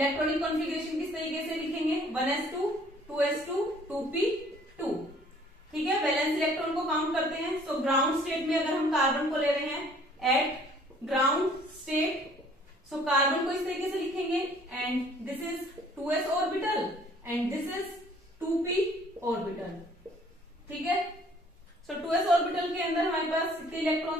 कॉन्फ़िगरेशन किस तरीके से लिखेंगे? 1s2 2s2 2p2। ठीक है, वैलेंस इलेक्ट्रॉन को काउंट करते हैं। सो ग्राउंड स्टेट में अगर हम कार्बन को ले रहे हैं eight ground state, so carbon को इस तरीके से लिखेंगे and this is 2s orbital and this is 2p orbital. ठीक है, सो 2s ऑर्बिटल के अंदर हमारे पास कितने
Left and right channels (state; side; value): normal; both; correlation 0.57